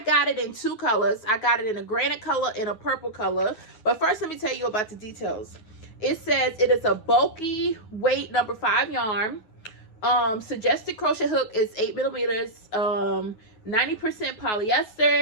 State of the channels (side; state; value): right; late; 9.4 ms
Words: it in two colors. I got it in a granite color and a purple color. But first, let me tell you about the details. It says it is a bulky weight number 5 yarn. Suggested crochet hook is 8 millimeters. 90%